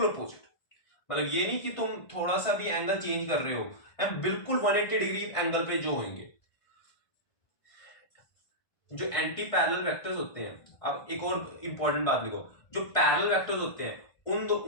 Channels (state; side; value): late; right; 1.5 ms